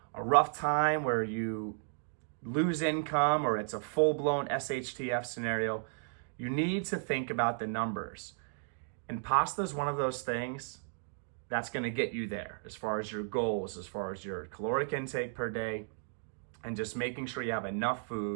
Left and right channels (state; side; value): silent; left; digital silence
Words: rough time where you lose income or it's a full-blown SHTF scenario, you need to think about the numbers. And pasta is one of those things that's going to get you there as far as your goals, as far as your caloric intake per day, and just making sure you have enough